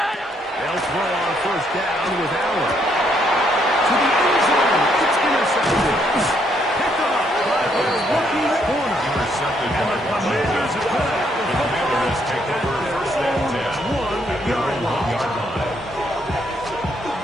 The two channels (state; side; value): normal; both; correlation 0.72